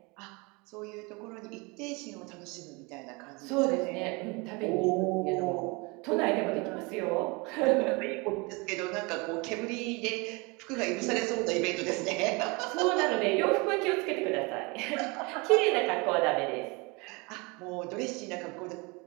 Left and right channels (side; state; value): left; quieter; 27.5 dB